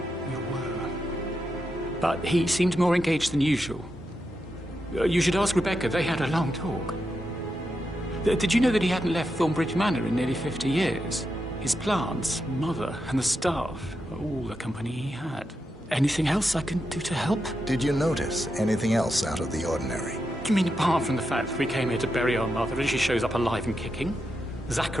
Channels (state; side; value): normal; both; correlation 0.86